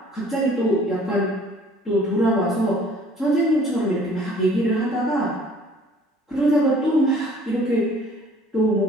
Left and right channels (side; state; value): both; normal; correlation 0.54